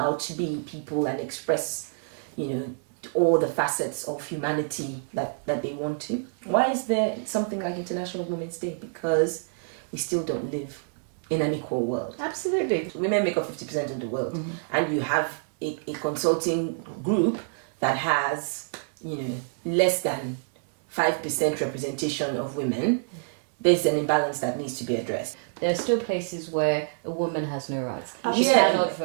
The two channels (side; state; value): left; silent; digital silence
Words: to be people and express, you know, all the facets of humanity that they want to. Why is there something like International Women's Day? Because we still don't live in an equal world. Absolutely. Women make up 50% of the world, and you have a consulting group that has, you know, less than 5% representation of women. There's an imbalance that needs to be addressed. There are still places where a woman has no rights. She Yeah. cannot